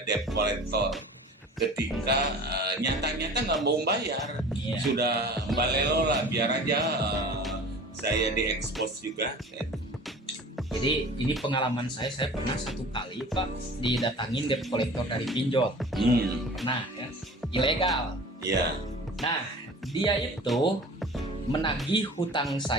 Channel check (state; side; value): normal; both; correlation 0.42